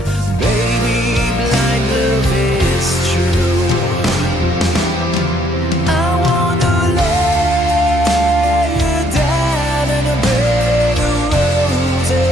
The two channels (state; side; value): normal; both; correlation 0.67